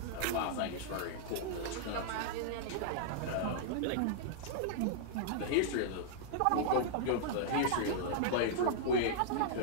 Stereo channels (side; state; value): both; different; correlation -0.02